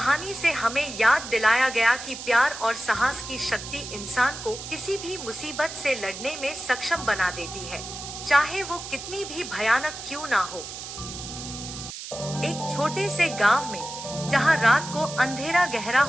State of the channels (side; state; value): right; noise; hiss, 10 dB below the sound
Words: से हमें याद दिलाया गया कि प्यार और साहस की शक्ति इंसान को किसी भी मुसीबत से लड़ने में सक्षम बना देती है, चाहे वो कितनी भी भयानक क्यों ना हो। एक छोटे से गांव में, जहां रात को अंधेरा गहरा